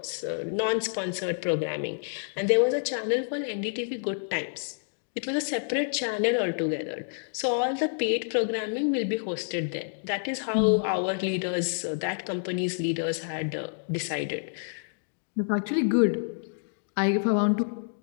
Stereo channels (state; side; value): silent; right; digital silence